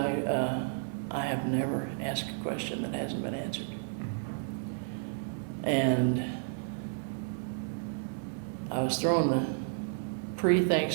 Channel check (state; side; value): silent; left; digital silence